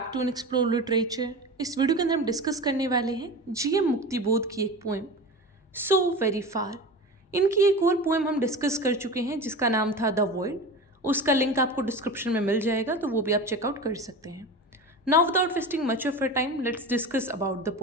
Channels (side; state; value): both; normal; correlation 0.30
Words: to an explore literature. इस video के अंदर हम डिस्कस करने वाले हैं जीएम मुक्तिबोध की एक पोएम सो वेरी फार। इनकी एक और पोएम हम डिस्कस कर चुके हैं जिसका नाम था द वॉइड। उसका लिंक आपको डिस्क्रिप्शन में मिल जाएगा, तो वो भी आप चेकआउट कर सकते हैं। Now without wasting much of your time, let's discuss about the